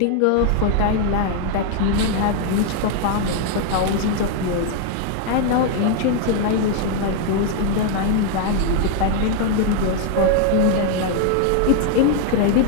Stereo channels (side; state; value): both; different; correlation 0.00